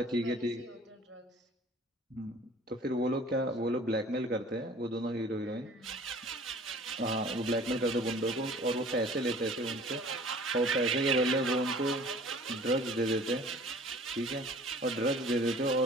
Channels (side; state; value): both; normal; correlation 0.48